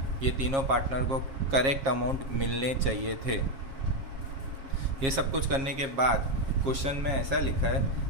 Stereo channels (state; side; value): late; left; 7.4 ms